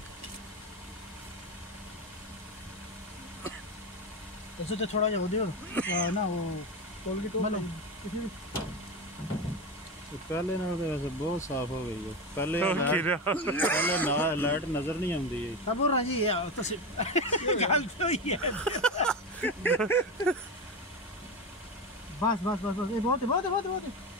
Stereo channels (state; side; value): normal; both; correlation 0.19